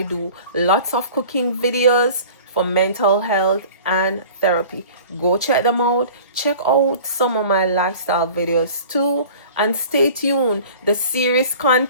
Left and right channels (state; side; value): inverted; both; correlation -0.43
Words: do lots of cooking videos for mental health and therapy. Go check them out. Check out some of my lifestyle videos too. And stay tuned. The series